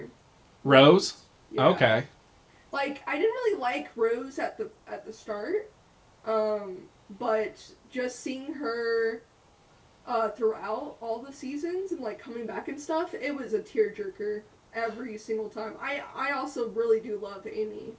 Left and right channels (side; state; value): both; identical; correlation 1.00